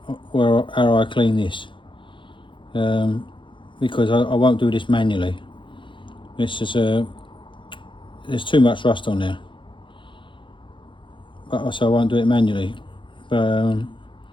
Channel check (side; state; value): right; late; 0.24 ms